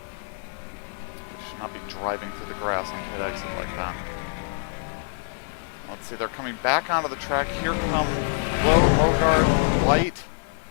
should not be driving through the grass on pit exit like that. Let's see, they're coming back onto the track. Here come Lowe, Mogard, White.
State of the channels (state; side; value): silent; right; digital silence